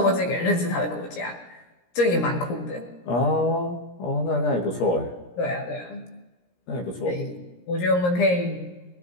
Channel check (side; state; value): right; late; 17 ms